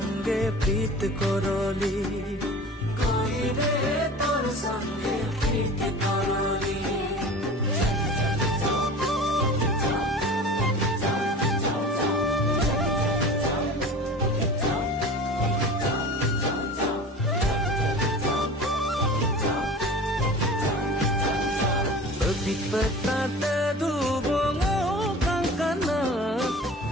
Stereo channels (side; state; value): both; normal; correlation 0.38